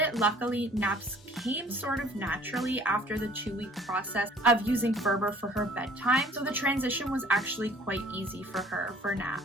luckily, naps came sort of naturally after the 2-week process of using Ferber for her bedtime, so the transition was actually quite easy for her for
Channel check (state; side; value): normal; both; correlation 0.54